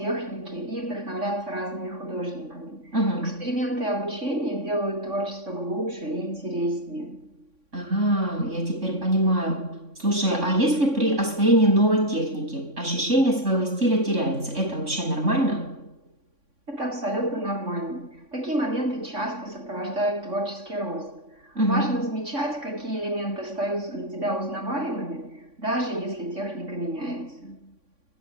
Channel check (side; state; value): left; late; 3.6 ms